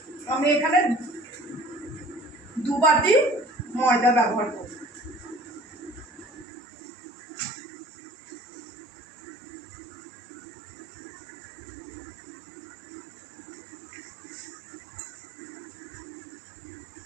আমি এখানে 2 বাটি ময়দা ব্যবহার করব।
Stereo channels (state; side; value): drops out; left; at 6.5 s